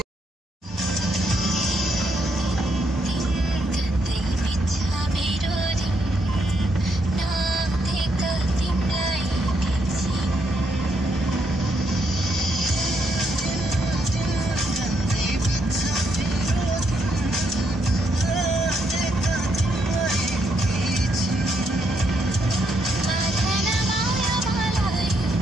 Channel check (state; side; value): normal; both; correlation 0.77